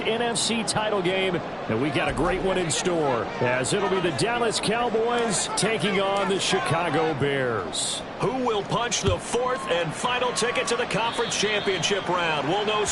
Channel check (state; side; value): identical; both; correlation 1.00